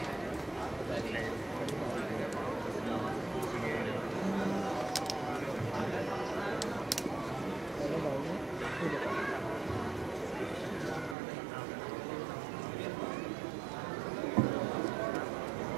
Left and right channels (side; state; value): left; drops out; at 11.2 s